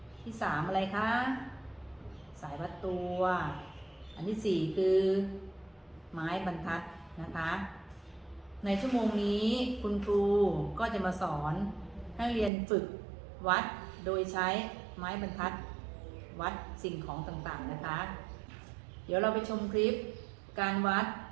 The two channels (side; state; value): left; drops out; at 12.5 s